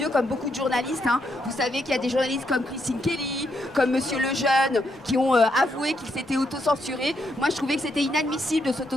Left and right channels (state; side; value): normal; both; correlation 0.78